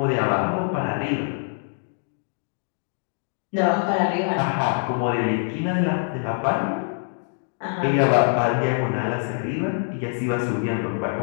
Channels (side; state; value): right; silent; 62 dB below the other